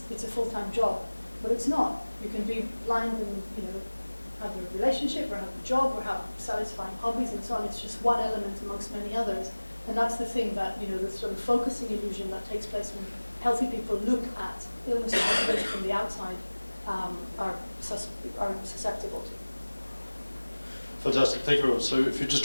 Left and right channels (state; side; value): inverted; both; correlation -1.00